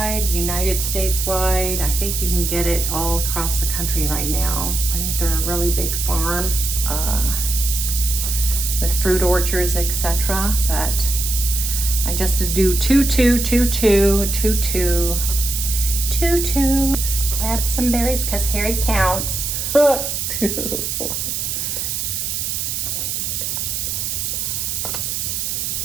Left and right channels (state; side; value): noise; right; hiss, 2 dB below the sound